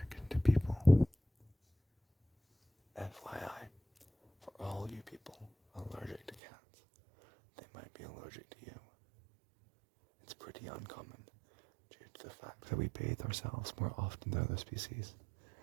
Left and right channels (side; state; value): left; drops out; at 6.4 s